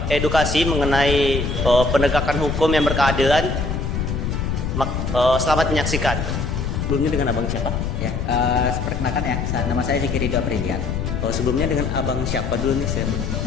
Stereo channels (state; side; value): noise; left; rumble, 2 dB below the sound